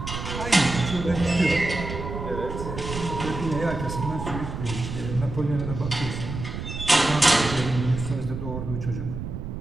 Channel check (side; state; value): right; noise; rumble, 7 dB below the sound